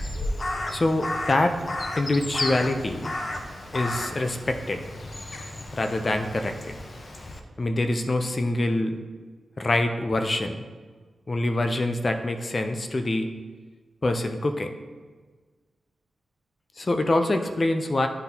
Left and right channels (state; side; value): normal; both; correlation 0.94